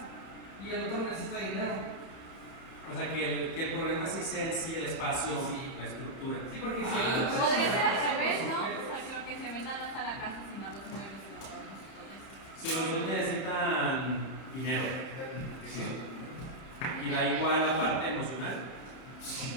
Y el otro necesita dinero. O sea, que el problema sí sea en sí el espacio, Sí. la estructura. Sí, porque si el otro Podría ser al revés, ¿no? O sea, que lo que se venda no es a la casa, sino a los muebles y los adornos y todo eso. Si los dos necesitan dinero Sí. y da igual la parte emocional.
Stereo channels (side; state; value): right; late; 30 ms